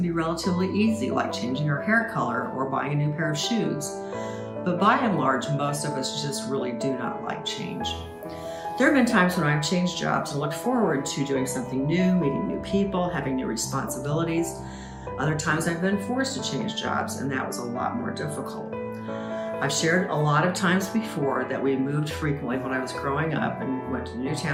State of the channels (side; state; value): both; identical; correlation 1.00